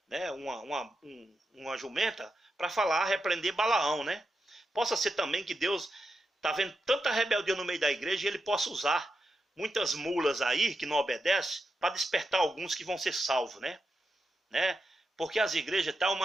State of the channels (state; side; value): normal; both; correlation 0.87